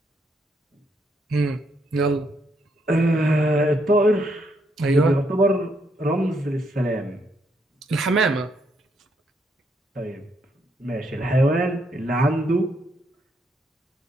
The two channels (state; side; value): normal; both; correlation 0.75